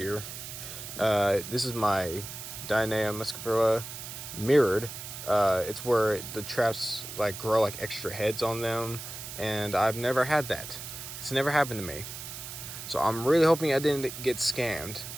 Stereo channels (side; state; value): right; noise; hiss, 10 dB below the sound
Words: This is my Dionea muscipula mirrored. It's where the traps like grow like extra heads on them, and I've never had that. It's never happened to me, so I'm really hoping I didn't get scammed,